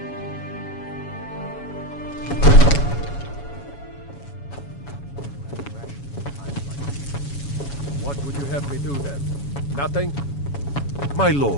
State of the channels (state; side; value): late; right; 7.1 ms